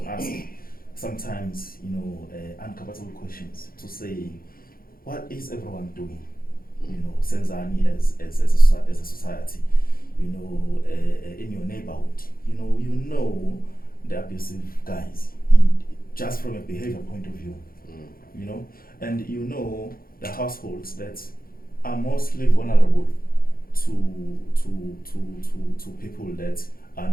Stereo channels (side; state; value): right; late; 0.42 ms